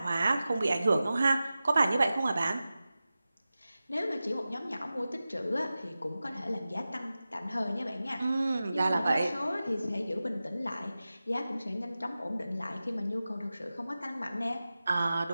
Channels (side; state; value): both; inverted; correlation -0.95